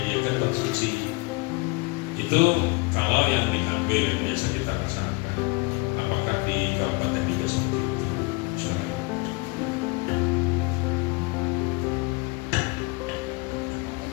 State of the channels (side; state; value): right; quieter; 26.3 dB